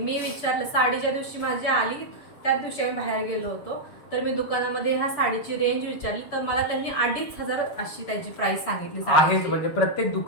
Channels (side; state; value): right; late; 6.9 ms